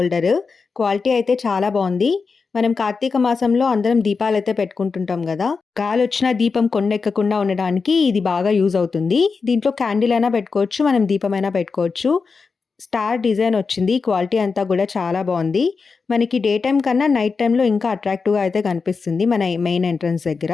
క్వాలిటీ అయితే చాలా బాగుంది. మనం కార్తీక మాసంలో అందరం దీపాలైతే పెట్టుకుంటుంటాం కదా. గాలొచ్చినా దీపం కొండెక్కకుండా ఉండడానికి ఇది బాగా యూజ్ అవుతుంది. దీంట్లో క్యాండిల్ అయినా పెట్టుకోవచ్చు, మనం దీపమైనా పెట్టుకోవచ్చు. స్టార్ డిజైన్ వచ్చింది. క్వాలిటీ అంతా కూడా చాలా బాగుంది. మనకి డే టైం కన్నా నైట్ టైంలో ఇంకా అట్రాక్టివ్గా అయితే కనిపిస్తుంది మన మెయిన్ ఎంట్రన్స్ దగ్గర.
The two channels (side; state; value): right; quieter; 4.8 dB